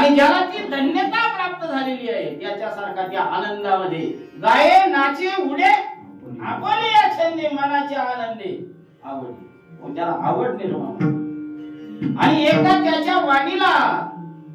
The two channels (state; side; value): identical; both; correlation 1.00